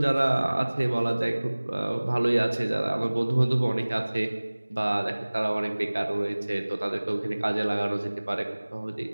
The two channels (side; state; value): both; inverted; correlation -1.00